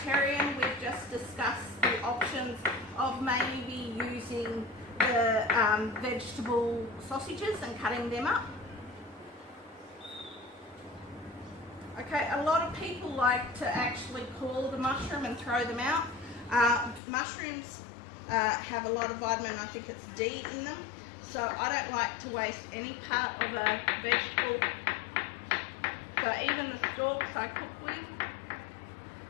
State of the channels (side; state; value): right; drops out; at 17.0 s